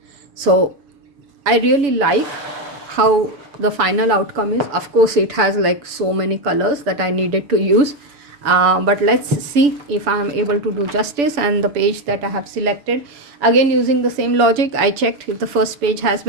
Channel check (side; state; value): left; late; 6.9 ms